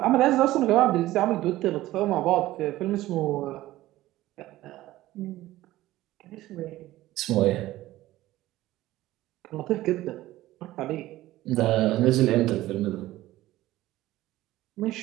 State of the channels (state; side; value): quieter; left; 16.1 dB